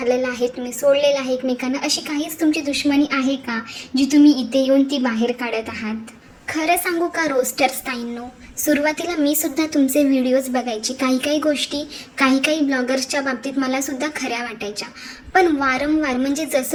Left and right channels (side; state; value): both; identical; correlation 1.00